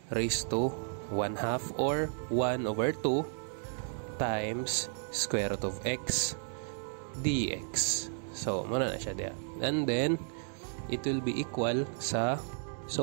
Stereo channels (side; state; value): left; silent; 56 dB below the other